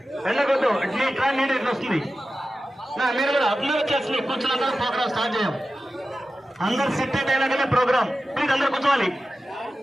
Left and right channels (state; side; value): normal; both; correlation 0.94